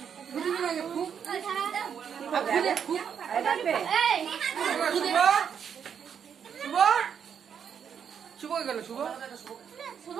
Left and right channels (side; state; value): left; quieter; 7.7 dB